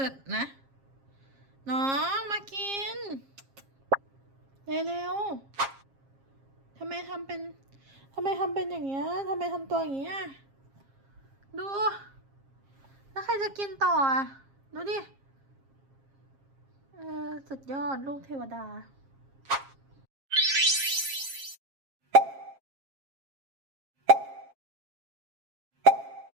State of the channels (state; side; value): late; left; 7.4 ms